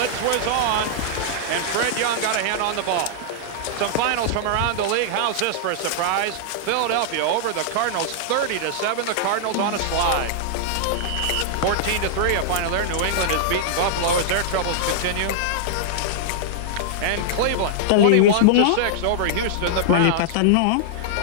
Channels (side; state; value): both; different; correlation -0.01